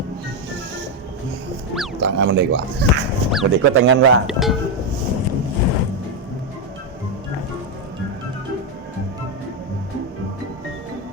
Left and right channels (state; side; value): normal; both; correlation 0.05